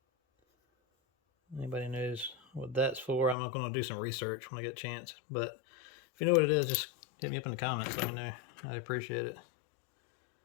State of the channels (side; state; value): right; drops out; at 3.4 s